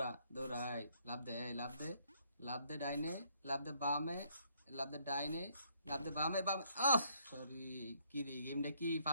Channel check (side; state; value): both; inverted; correlation -0.68